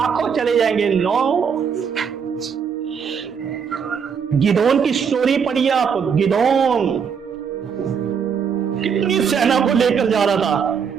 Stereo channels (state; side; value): quieter; left; 6.7 dB